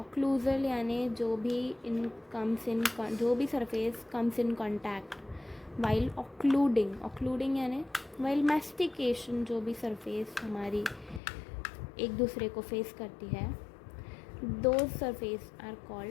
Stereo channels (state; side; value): drops out; right; at 11.2 s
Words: यानी जो भी surface comes in contact while occluding यानी वाइल मैस्टिकेशन. जो भी सरफेस हमारी एक दूसरे को फेस करती है, those surface are